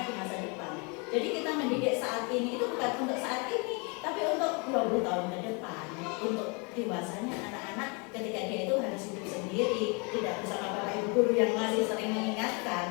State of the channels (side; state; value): right; quieter; 32.1 dB